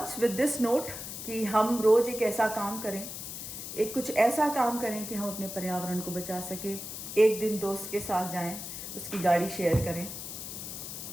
with this note कि हम रोज़ एक ऐसा काम करें, एक कुछ ऐसा काम करें कि हम अपने पर्यावरण को बचा सकें। एक दिन दोस्त के साथ जाएं, उसकी गाड़ी शेयर करें।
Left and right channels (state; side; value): noise; left; hiss, 8 dB below the sound